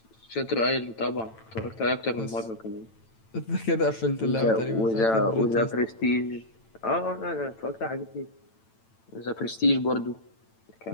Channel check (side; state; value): right; late; 9.0 ms